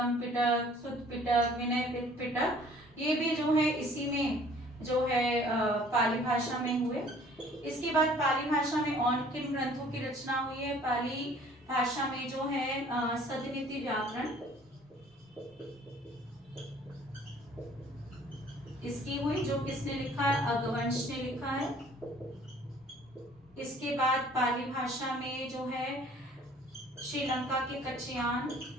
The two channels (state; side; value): normal; both; correlation 0.54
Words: पिटक, सुत्त पिटक, विनय पिटक, ये भी जो है इसी में जो है पाली भाषा में हुए। इसके बाद पाली भाषा में और किन ग्रंथों की रचना हुई है? पाली भाषा में जो है सदनीति व्याकरण इसकी हुई, जो किसने लिखा है? अगवंश ने लिखा है। इसके बाद पाली भाषा में जो है श्रीलंका के कच्छयान